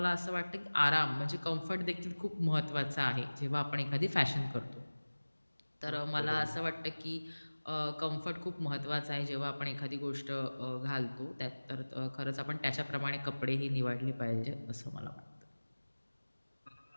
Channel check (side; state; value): both; inverted; correlation -1.00